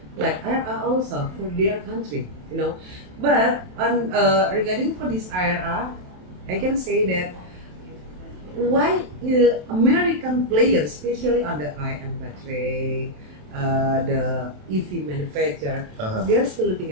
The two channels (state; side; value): late; left; 27 ms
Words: like IRR also for their country, you know. But on regarding for this IRA, I can say that why American players, especially on the IM battery, the EV manufacturer, they're still